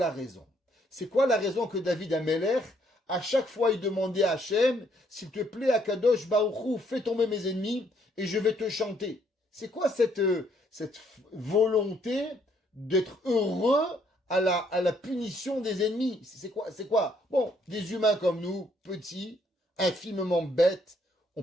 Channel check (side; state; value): both; normal; correlation 0.69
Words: raison? C'est quoi la raison que David Amelech, à chaque fois il demandait à Hachem, s'il te plaît, Akadosh Baruch Hu, fais tomber mes ennemis et je vais te chanter? C'est quoi cette volonté d'être heureux à la punition des ennemis? C'est quoi? Bon, des humains comme nous, petits, infiniment bêtes, on